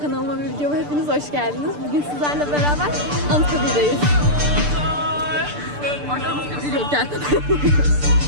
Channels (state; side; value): late; left; 6.8 ms